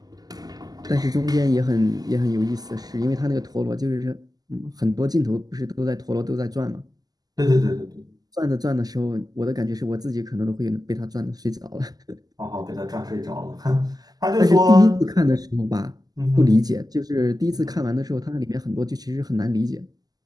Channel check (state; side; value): late; left; 0.18 ms